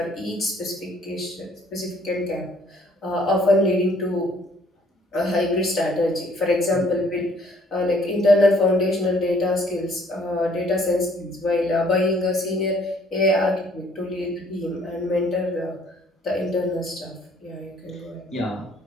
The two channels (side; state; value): both; normal; correlation 0.61